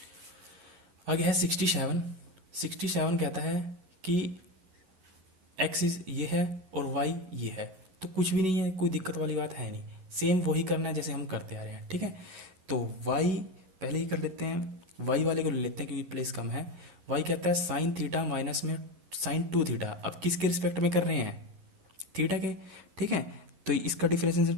आगे है 67। 67 कहता है कि एक्सिस ये है और वाई ये है, तो कुछ भी नहीं है, कोई दिक्कत वाली बात है नहीं, सेम वही करना है जैसे हम करते आ रहे हैं, ठीक है। तो वाई पहले ही कर लेते हैं, वाई वाले को ले लेते हैं क्योंकि प्लेस कम है। वाई कहता है साइन थीटा माइनस में साइन 2 थीटा, अब किसके रिस्पेक्ट में कर रहे हैं थीटा के, ठीक है। तो इसका डिफरेंशिएशन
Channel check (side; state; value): left; late; 11 ms